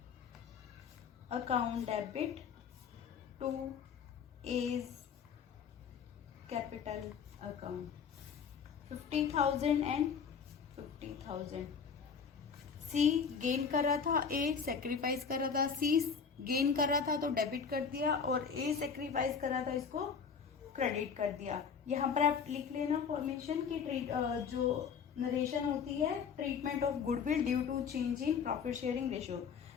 account debit to is capital account 50,000 and 50,000। C gain कर रहा था, ए सेक्रीफाइस कर रहा था। सी गेन कर रहा था तो डेबिट कर दिया, और ए सेक्रीफाइस कर रहा था इसको क्रेडिट कर दिया। यहाँ पर आप लिख लेना फॉर्मेशन की जो नरेशन होती है, treatment of goodwill due to change in profit sharing ratio.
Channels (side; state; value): right; quieter; 6.3 dB